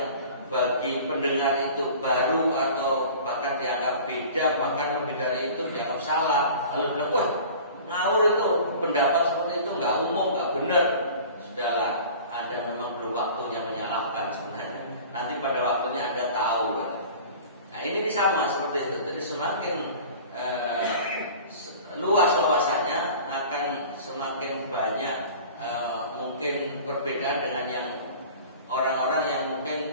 bagi pendengar itu baru atau bahkan dianggap beda, bahkan lebih dari itu dianggap salah, lalu bilang wah ngawur itu, pendapat seperti itu nggak umum, nggak benar. Sudahlah, Anda memang belum waktunya menyalahkan sebenarnya. Nanti pada waktunya Anda tahu kan. Nah ini sama seperti itu. Jadi semakin luas wawasannya akan semakin banyak mungkin perbedaan dengan yang orang-orang yang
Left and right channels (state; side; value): inverted; both; correlation -0.42